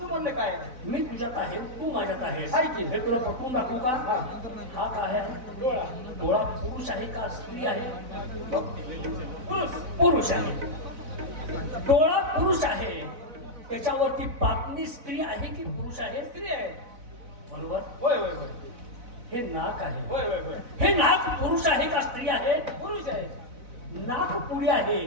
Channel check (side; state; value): left; late; 4.0 ms